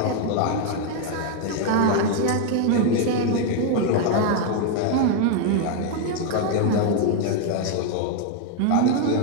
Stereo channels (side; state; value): both; different; correlation 0.01